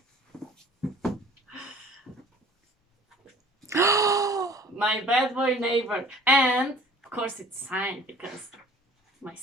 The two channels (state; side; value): normal; both; correlation 0.49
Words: My bad boy neighbor. And, of course, it's signed because my